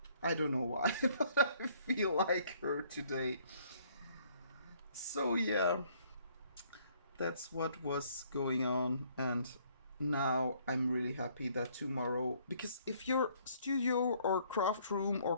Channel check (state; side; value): inverted; both; correlation -0.63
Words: I don't know why, but I feel like her today. So yeah, that's what was going on, and now I'm really happy that tomorrow, because if your studio or craft room